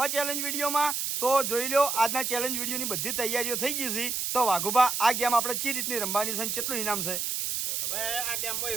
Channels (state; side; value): noise; right; hiss, 1 dB below the sound